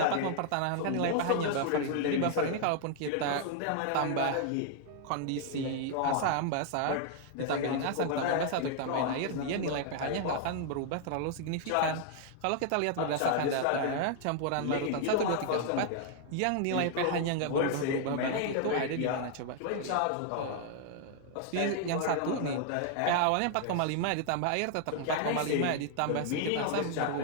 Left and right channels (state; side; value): different; both; correlation 0.00